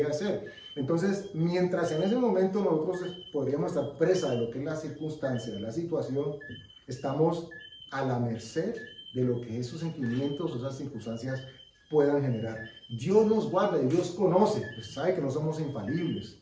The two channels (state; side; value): identical; both; correlation 1.00